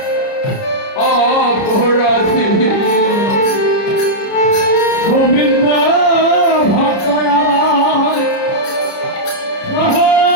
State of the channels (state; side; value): late; right; 30 ms